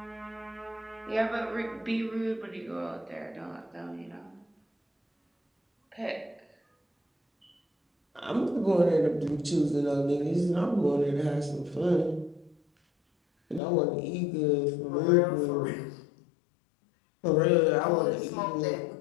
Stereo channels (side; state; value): right; drops out; at 13.6 s